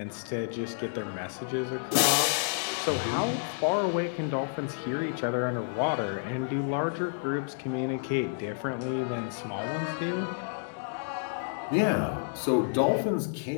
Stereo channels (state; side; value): silent; right; digital silence